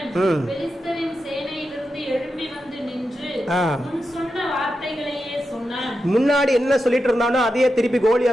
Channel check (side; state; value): both; normal; correlation 0.89